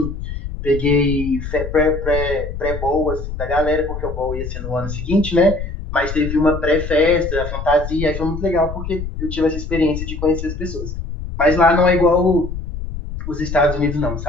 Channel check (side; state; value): left; noise; rumble, 7 dB below the sound